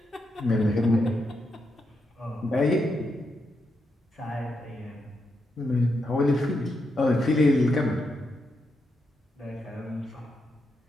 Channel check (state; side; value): normal; both; correlation 0.83